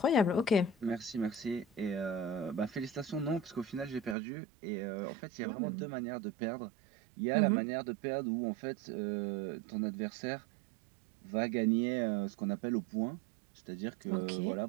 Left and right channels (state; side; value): drops out; left; at 4.2 s